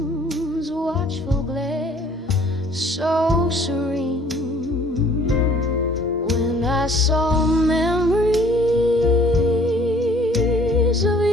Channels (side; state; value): both; normal; correlation 0.56